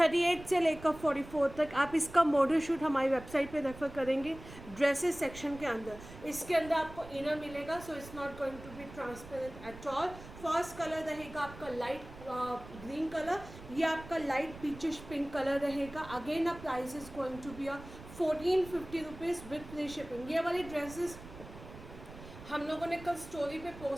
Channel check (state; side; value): noise; right; rumble, 16 dB below the sound